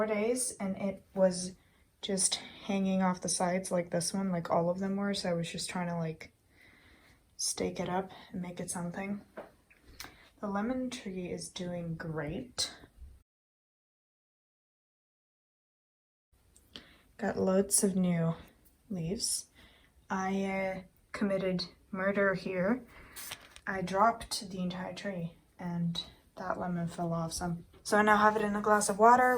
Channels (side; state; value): both; identical; correlation 1.00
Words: days, and it was just hanging off the sides like this one, like all of them were, so I was just trying to like stake it up and make it something. The lemon tree is doing great. Got loads of new leaves. I committed murder here. I dropped the entire tree and that lemon fell off some. So I now have it in a glass of water